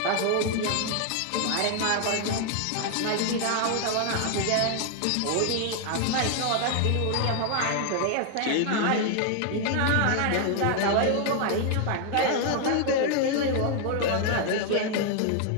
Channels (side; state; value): both; different; correlation 0.00